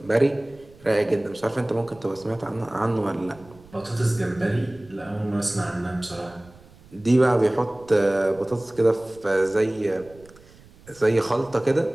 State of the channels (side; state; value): right; noise; rumble, 24 dB below the sound